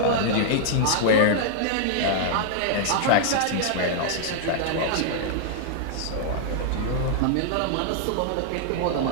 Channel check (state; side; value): different; both; correlation -0.01